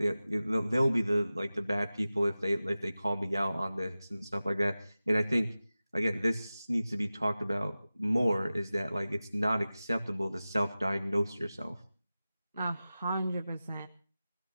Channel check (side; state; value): both; inverted; correlation -0.96